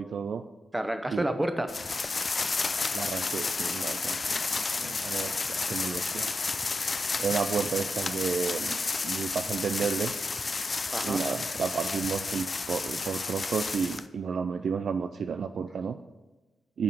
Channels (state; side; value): normal; both; correlation 0.86